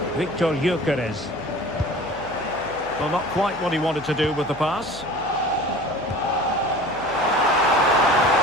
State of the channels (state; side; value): noise; left; hum, 21 dB below the sound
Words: Victor Gyökeres. Well, not quite what he wanted to do with the pass.